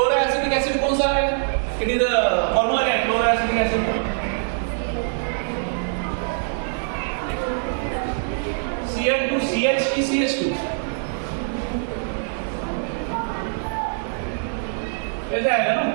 एसिड कौन सा है? इट इज फॉर्मूला क्या है क्लोरोएसिटिक एसिड? Cl2CH की CH2 कैसे आएगा ना?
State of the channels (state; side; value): silent; left; digital silence